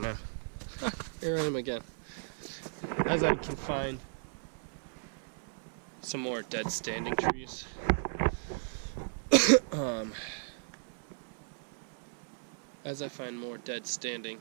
now. Here I am again. As I can find some more dead standing trees. As I find more dead standing,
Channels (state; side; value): silent; left; 55 dB below the other